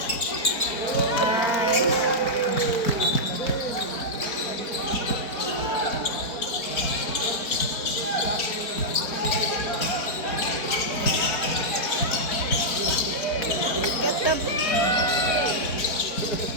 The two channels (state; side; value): late; right; 4.5 ms